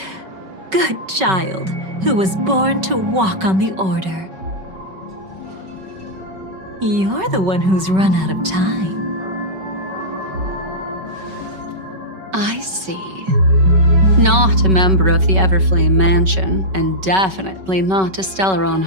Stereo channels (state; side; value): late; left; 5.3 ms